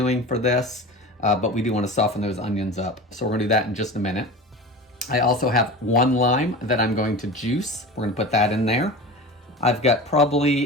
for this. But we do want to soften those onions up. So we're going to do that in just a minute. I also have 1 lime that I'm going to juice. We're going to put that in there. I've got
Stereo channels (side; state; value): both; normal; correlation 0.32